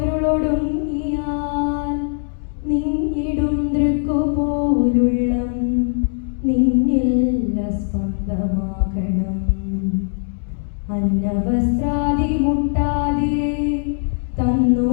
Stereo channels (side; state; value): right; silent; 61 dB below the other